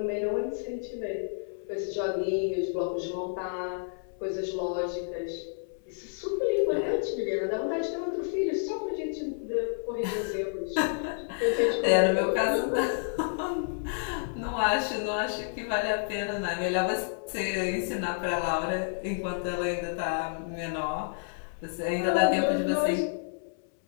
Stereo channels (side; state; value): right; silent; 58 dB below the other